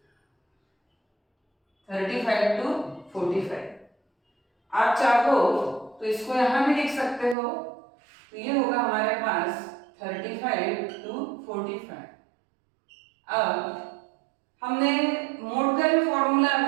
35 to 45। आप चाहो तो इसको यहां भी लिख सकते हो, तो ये होगा हमारे पास 35 to 45। अब हमने मोड का जो फॉर्मूला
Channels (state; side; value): drops out; left; at 7.4 s